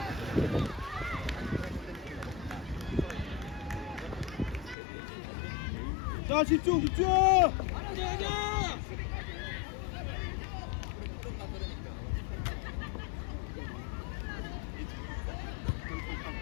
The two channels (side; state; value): right; drops out; at 4.8 s